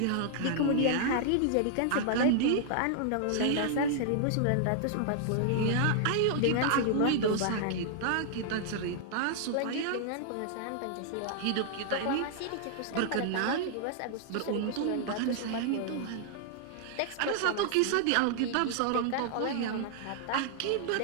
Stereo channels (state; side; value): different; both; correlation -0.01